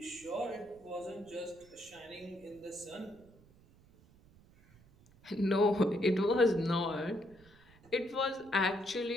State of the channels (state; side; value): noise; right; rumble, 26 dB below the sound